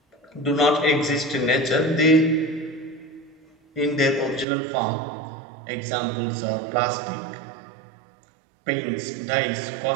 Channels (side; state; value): left; drops out; at 4.5 s